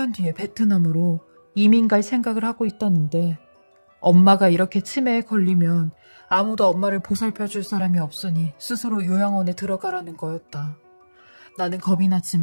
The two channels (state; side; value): inverted; both; correlation -1.00